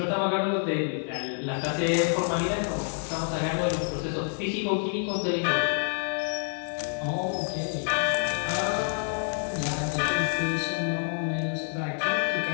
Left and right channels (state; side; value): silent; right; 59 dB below the other